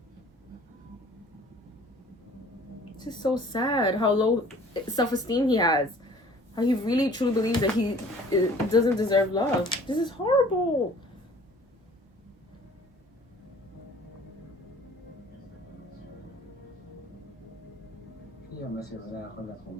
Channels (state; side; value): normal; both; correlation 0.51